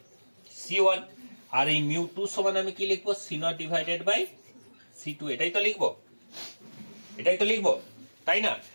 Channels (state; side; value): inverted; both; correlation -1.00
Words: c1, আর এই μ2 সমান আমি কি লিখবো, c0 ডিভাইডেড বাই c2। এটাই তো লিখবো, তাই না?